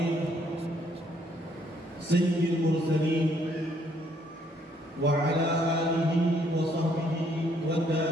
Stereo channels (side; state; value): both; normal; correlation 0.68